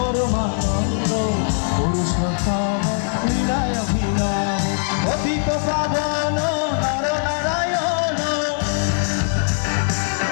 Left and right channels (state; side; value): silent; right; digital silence